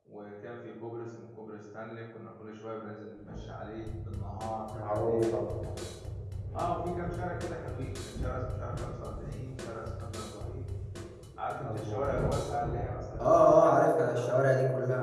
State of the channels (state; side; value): identical; both; correlation 1.00